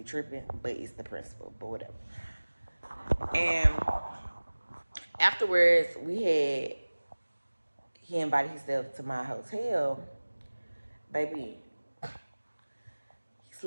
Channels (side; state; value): both; inverted; correlation -1.00